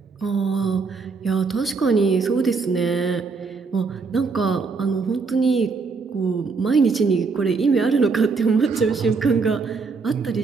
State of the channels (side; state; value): left; quieter; 4.6 dB